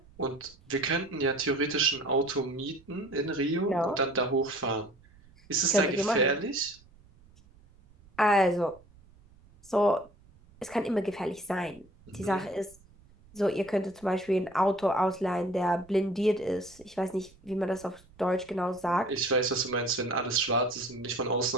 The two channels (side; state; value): right; noise; rumble, 27 dB below the sound